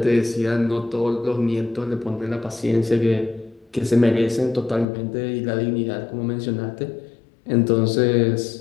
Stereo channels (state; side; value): drops out; right; at 4.9 s